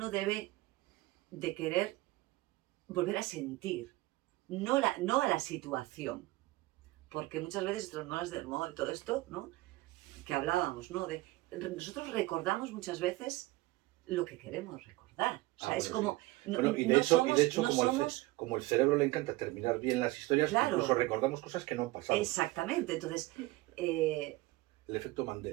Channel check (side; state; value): left; quieter; 19.8 dB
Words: debe de querer volver a sentir, no a la situación, porque muchas veces estas molas del modo y todo esto, ¿no? Que hablábamos, ¿no? Nosotros recordamos muchas veces lo que queremos recordar. O sea, es como... Sí. Y de hecho como el cerebro le encanta terminar bien las historias, claro, incluso recordamos cosas que no han pasado. Exactamente. Entonces... el efecto